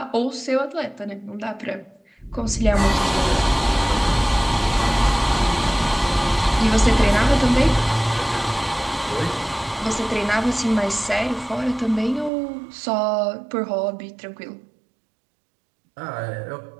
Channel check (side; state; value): left; drops out; at 12.3 s